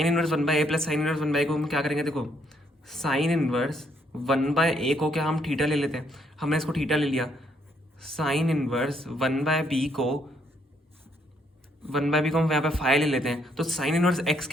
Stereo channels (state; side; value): normal; both; correlation 0.72